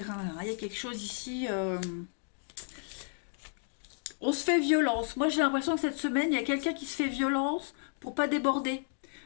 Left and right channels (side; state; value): right; silent; digital silence